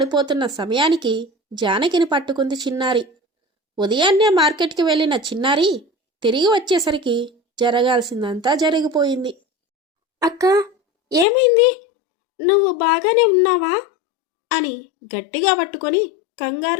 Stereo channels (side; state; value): right; drops out; at 11.2 s